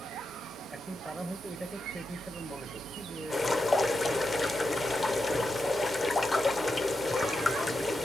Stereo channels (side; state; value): both; normal; correlation 0.87